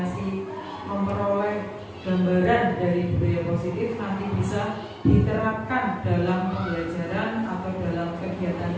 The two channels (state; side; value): identical; both; correlation 1.00